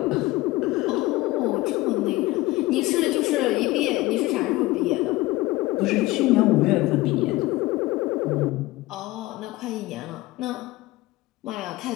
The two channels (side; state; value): right; quieter; 19.2 dB